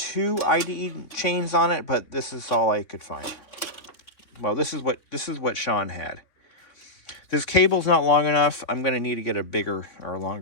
IDE chains on it, but this is all I could find. Well, this is what Sean had. This cable's not long enough. I'm going to need to get a bigger or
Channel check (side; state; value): right; late; 3.2 ms